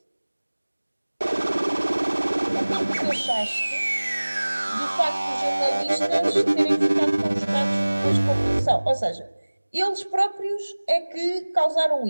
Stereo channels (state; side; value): inverted; both; correlation -1.00